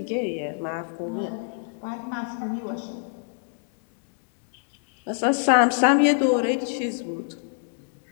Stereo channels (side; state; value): right; silent; digital silence